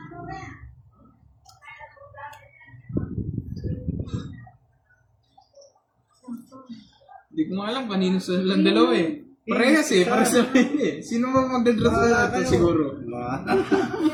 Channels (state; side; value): identical; both; correlation 1.00